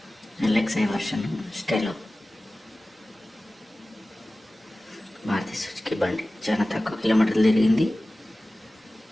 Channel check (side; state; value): both; normal; correlation 0.97